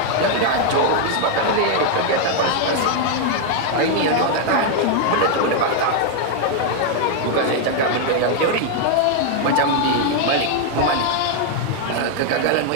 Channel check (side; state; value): both; different; correlation 0.00